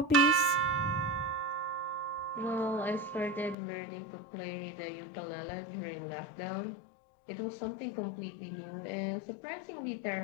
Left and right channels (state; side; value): drops out; right; at 3.6 s